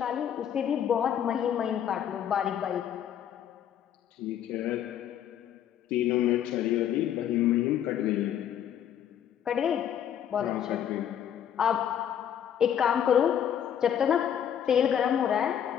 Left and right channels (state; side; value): quieter; right; 9.6 dB